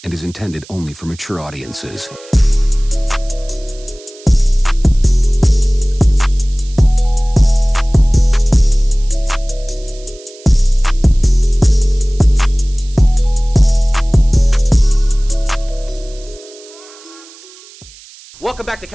and is intended only for mature audiences. Welcome back to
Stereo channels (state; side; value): noise; right; hiss, 22 dB below the sound